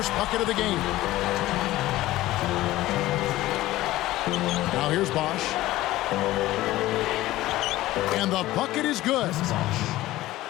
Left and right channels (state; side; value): quieter; right; 16.5 dB